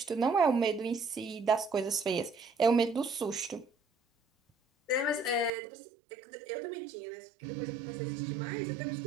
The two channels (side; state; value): left; drops out; at 5.5 s